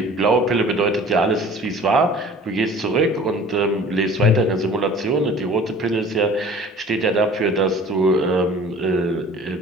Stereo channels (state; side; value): normal; both; correlation 0.47